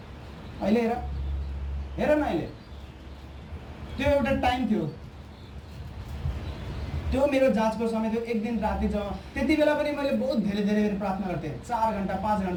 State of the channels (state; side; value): identical; both; correlation 1.00